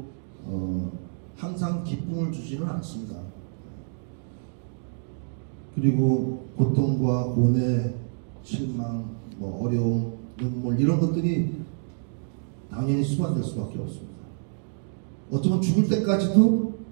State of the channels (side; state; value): left; silent; digital silence